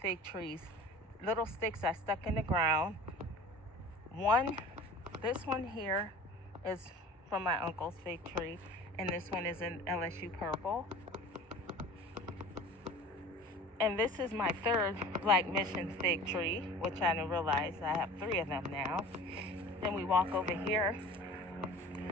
fig trees. Little sticks I stuck in the ground. This one here is from my uncle's fig tree, and this one is an LSU purple. And this is my 3rd Black Mission fig tree, which I didn't realize I have 3 of them now. Then we walk over here.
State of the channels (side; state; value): both; normal; correlation 0.41